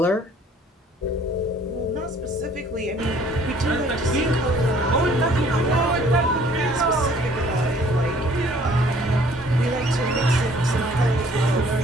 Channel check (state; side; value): normal; both; correlation 0.57